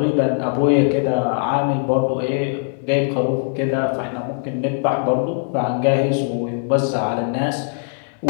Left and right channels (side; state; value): right; silent; 61 dB below the other